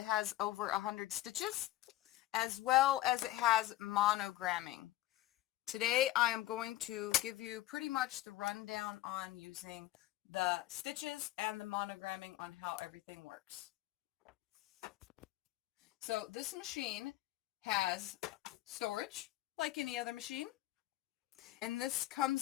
has over 100 stitches, as well as it has monogramming. Today I am going to give you pretty much the rundown on using the stitches and the monogramming on how everything works. So this machine has storage like any other machine, and this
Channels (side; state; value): right; quieter; 15.7 dB